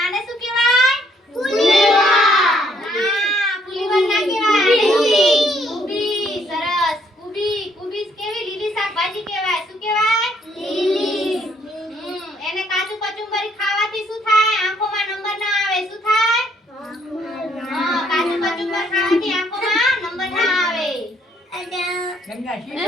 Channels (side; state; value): both; normal; correlation 0.67